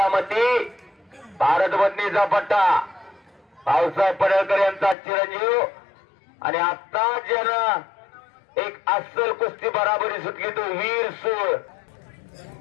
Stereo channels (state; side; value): drops out; right; at 5.0 s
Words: भारत बदनीचा पट्टा भाऊसाहेब पडळकर यांचा चिरंजीव आणि आता ज्यानं एक अस्सल कुस्ती बराबरी सुटली तो वीर सूळ